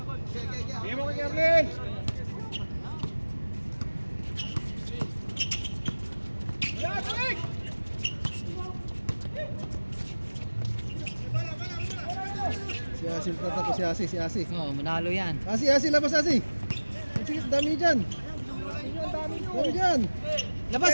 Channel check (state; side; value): inverted; both; correlation -1.00